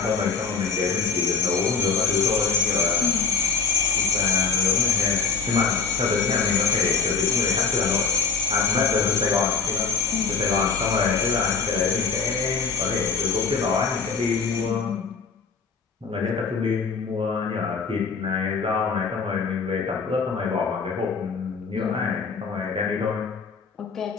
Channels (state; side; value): quieter; right; 5.5 dB